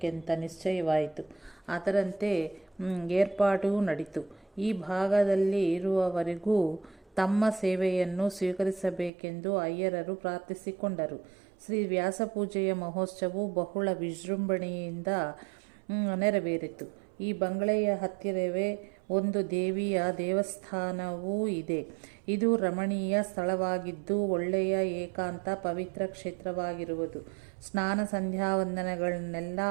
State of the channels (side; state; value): left; drops out; at 9.1 s